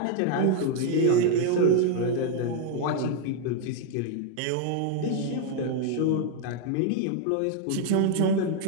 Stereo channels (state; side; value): different; both; correlation 0.00